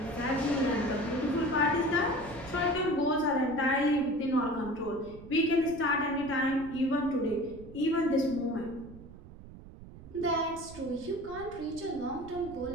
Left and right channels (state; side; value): noise; right; rumble, 16 dB below the sound